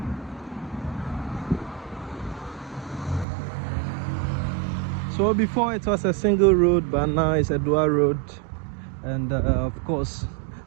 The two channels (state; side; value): drops out; left; at 3.2 s